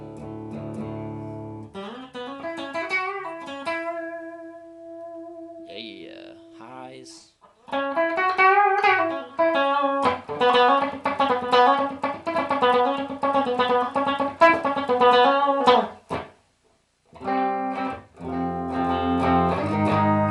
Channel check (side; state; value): both; identical; correlation 1.00